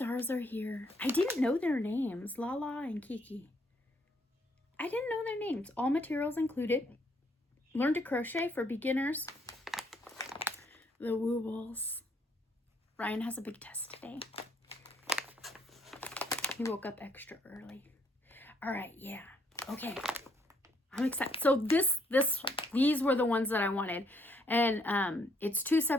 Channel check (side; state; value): both; normal; correlation 0.69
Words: are here. I didn't know their names. Lala and Kiki. I didn't know their names. All materials included. Learn to crochet for beginners. The Wobbles. Ryan has a big test today. He woke up extra early. All right, yeah. Okay. I'm excited. So these were the ones that I wanted. And it's 2